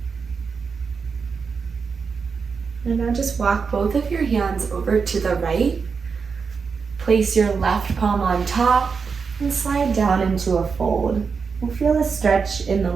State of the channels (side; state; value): left; quieter; 5.4 dB